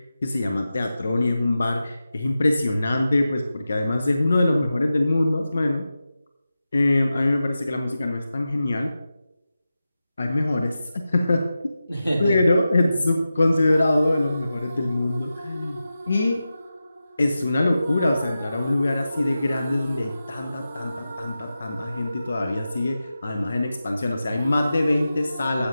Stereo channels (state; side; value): inverted; both; correlation -0.93